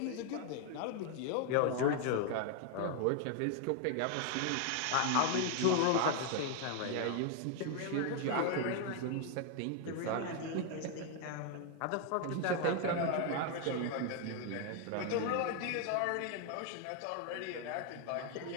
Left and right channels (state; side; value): different; both; correlation 0.00